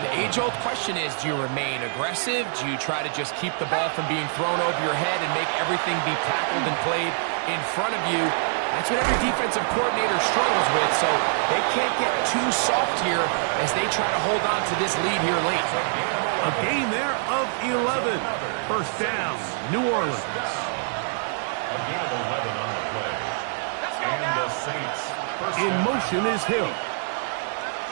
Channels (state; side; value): silent; left; 60 dB below the other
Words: the age-old question is, do you remain aggressive? Do you try to just keep the ball from being thrown over your head and make everything be tackled and played in front of you? That's what every defensive coordinator struggles with, so they can't get too soft here as they try to hold on to this lead here late. A gain there of 11. 1st down, New Orleans. A gain of 11 on the play. And the Saints. In motion is Hill.